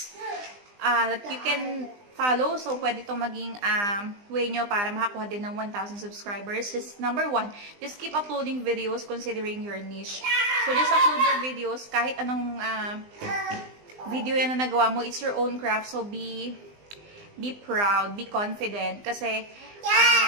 that you can follow. So, pwede itong maging way nyo para makakuha din ng 1,000 subscribers. Just number 1, just keep uploading videos considering your niche. So, just upload your videos. Kahit anong video yan na nagawa mo, it's your own craft. So, be proud, be confident. Kasi,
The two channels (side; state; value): left; late; 20 ms